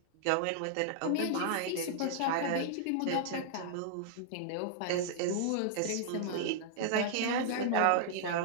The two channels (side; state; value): both; different; correlation -0.01